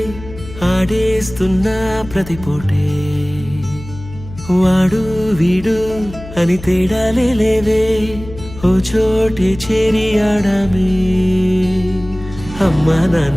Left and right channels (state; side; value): noise; left; hum, 15 dB below the sound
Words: ఆడేస్తున్నా ప్రతి పూటే వాడు వీడు అని తేడాలే లేవే ఓ చోటే చేరి ఆడామే అమ్మా